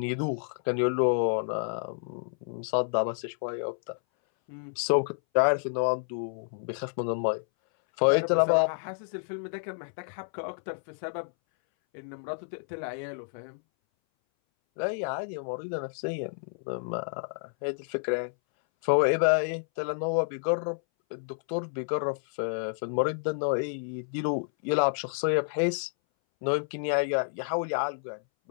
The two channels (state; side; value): silent; right; 58 dB below the other